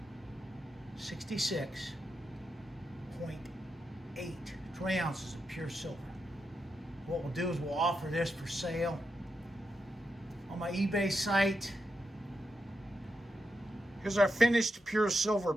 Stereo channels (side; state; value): both; normal; correlation 0.86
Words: 66.8 20 ounces of pure silver. What we'll do is we'll offer this for sale on my eBay site. Here's our finished pure silver